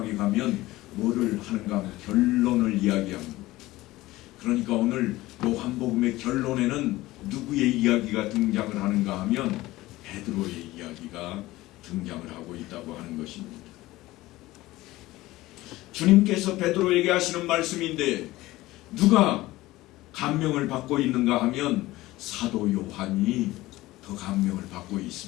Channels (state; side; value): quieter; right; 18.0 dB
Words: 가면 뭐를 하는가 하면 결론을 이야기합니다. 그러니까 오늘 요한복음의 결론에는 누구의 이야기가 등장을 하는가 하면 베드로의 이야기가 등장을 하고 있다고 하는 것입니다. 주님께서 베드로에게 하시는 말씀인데 누가 감명을 받고 있는가 하면 사도 요한이 더 감명을 받고